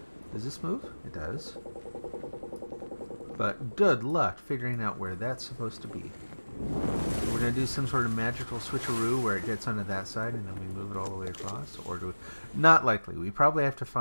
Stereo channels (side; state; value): both; inverted; correlation -1.00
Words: Does this move? It does. But good luck figuring out where that's supposed to be. We're going to do some sort of magical switcheroo where it gets onto that side and then we move it all the way across. Or do we... Not likely. We probably have to